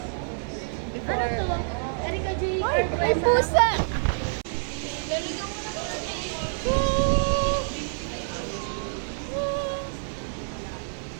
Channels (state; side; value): silent; left; 60 dB below the other